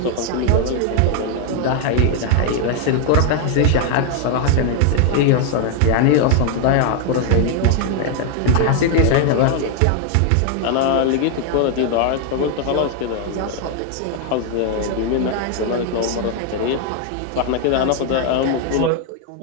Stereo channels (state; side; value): different; both; correlation 0.00